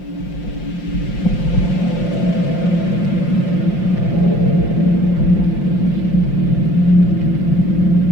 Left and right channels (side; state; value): right; late; 5.7 ms